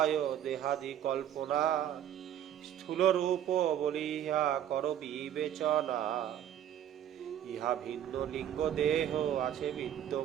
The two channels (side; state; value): left; quieter; 10.5 dB